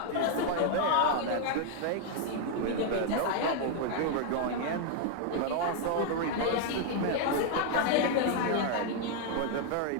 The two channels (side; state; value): both; different; correlation 0.00